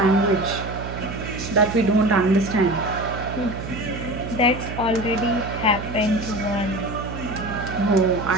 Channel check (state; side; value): noise; right; hum, 8 dB below the sound